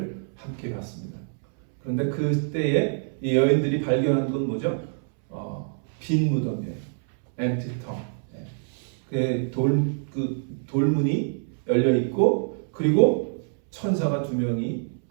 함께 봤습니다. 그런데 그때에 이 여인들이 발견한 건 뭐죠? 빈 무덤이에요. empty tomb. 그 돌문이 열려 있고 그리고 천사가 2명이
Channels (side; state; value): left; silent; 61 dB below the other